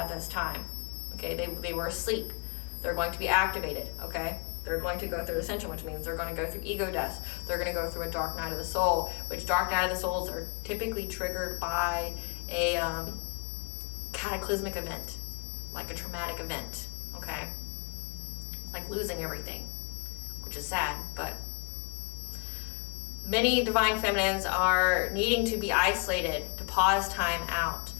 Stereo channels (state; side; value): quieter; right; 35.8 dB